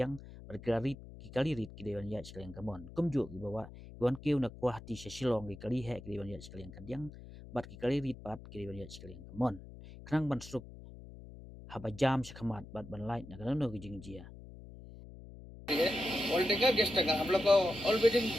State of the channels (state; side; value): noise; left; hum, 16 dB below the sound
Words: berkari ki kali rit ki dewan yat sekali yang kamon kum ju ki bawa wan kiu na kuahti silong ki kali he ki dewan yat sekali yang kadyang bat ki kali rit pat ki dewan yat sekali yang kamon kenang ban suk haba jam sekhamat bat ban light na kanu ki jingjia all taker guest taker हम लोग को all wedding